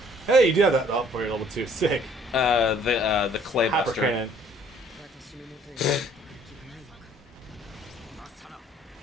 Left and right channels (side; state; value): both; normal; correlation 0.59